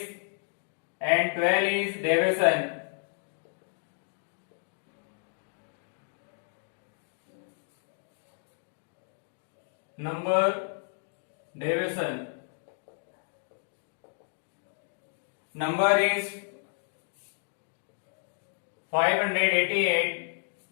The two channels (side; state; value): right; silent; digital silence